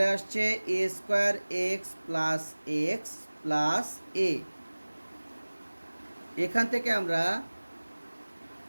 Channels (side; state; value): both; inverted; correlation -1.00